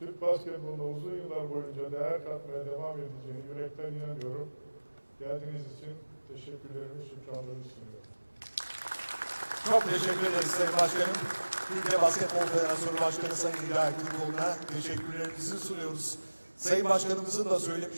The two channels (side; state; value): both; inverted; correlation -1.00